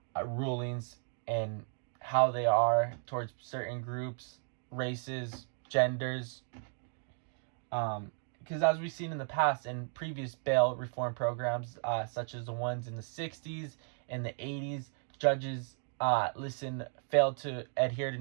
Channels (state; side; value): silent; left; 55 dB below the other